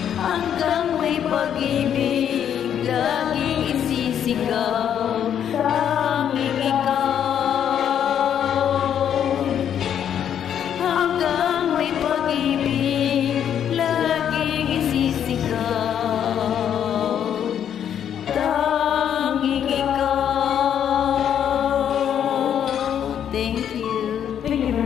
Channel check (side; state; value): right; quieter; 9.2 dB